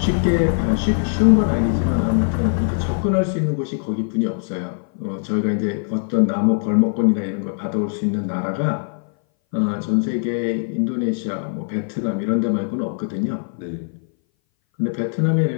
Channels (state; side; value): silent; right; 60 dB below the other